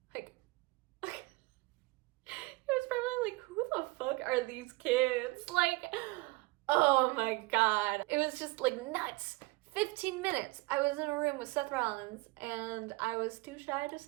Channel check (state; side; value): quieter; left; 24.2 dB